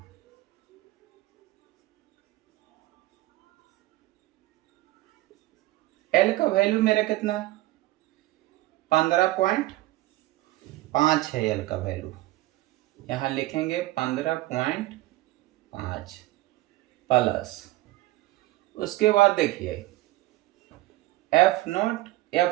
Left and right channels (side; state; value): left; quieter; 17.7 dB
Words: L का वैल्यू मेरा कितना है, 15.5 है L का वैल्यू। यहां लिखेंगे 15.5 प्लस, उसके बाद देखिए